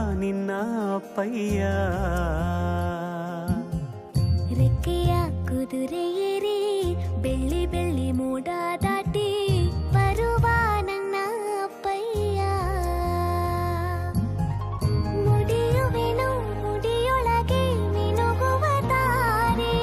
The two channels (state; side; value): identical; both; correlation 1.00